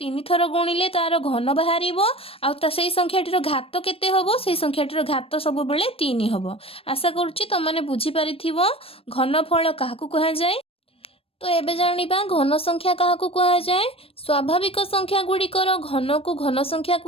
3 थर गुणिले तार घन बाहरिबो आ ता सेही संख्याटीर घात केते हबो सेही संख्याटीर घात सब बेले 3 हबो। आशा करूची तुम माने बुझी पारिथिबो घनफल काहाकु कहा जाए। तो एबे जानिबा घन संख्या काहाकु कहा जाए। स्वाभाविक संख्या गुड़िकर घन को घन संख्या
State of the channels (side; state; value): right; late; 0.28 ms